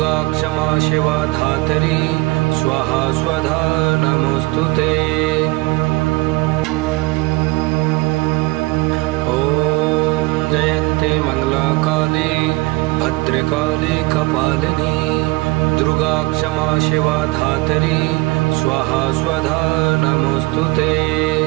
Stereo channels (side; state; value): left; quieter; 22.9 dB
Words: क्षमा शिवा धात्री स्वाहा स्वधा नमोस्तुते। ओम जयन्ती मंगलाकाली भद्रकाली कपालिनी दुर्गा क्षमा शिवा धात्री स्वाहा स्वधा नमोस्तुते।